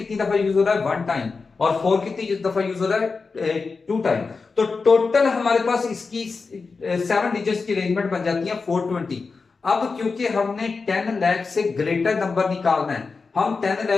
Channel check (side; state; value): right; quieter; 4.5 dB